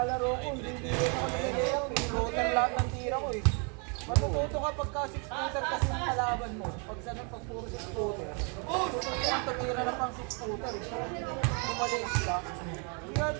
ko, hindi ako nag-layout. Pinutan lahat ng tira ko eh. Matututo ka pagka 6-footer kasi yung kalaban mo. Pag sa pag puro 6-footer. Tututunan tumira na pang 6-footer eh. Kumalis ka. Hindi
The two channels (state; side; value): quieter; left; 36.1 dB